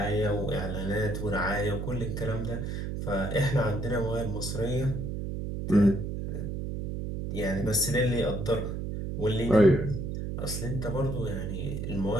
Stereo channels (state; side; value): noise; right; hum, 4 dB below the sound